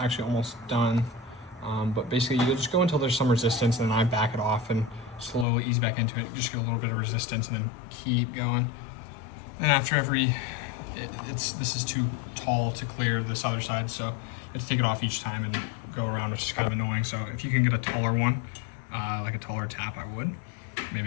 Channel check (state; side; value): drops out; right; at 5.5 s